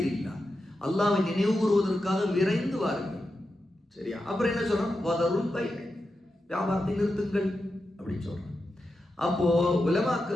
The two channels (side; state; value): both; normal; correlation 0.89